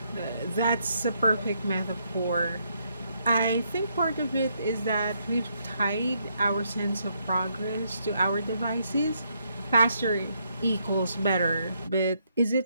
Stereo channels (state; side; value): inverted; both; correlation -0.75